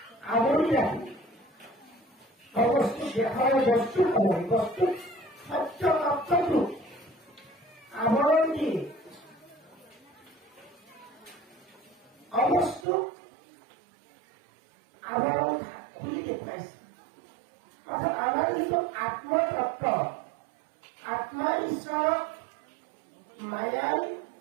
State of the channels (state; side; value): drops out; left; at 12.9 s